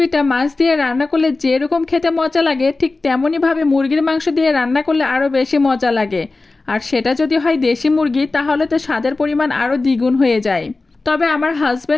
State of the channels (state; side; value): quieter; right; 3.4 dB